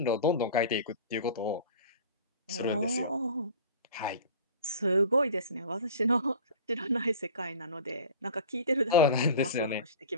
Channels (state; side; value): inverted; both; correlation -0.38